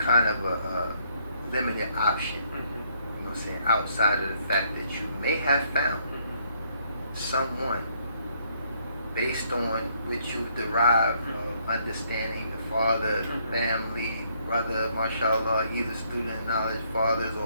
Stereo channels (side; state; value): both; inverted; correlation -0.70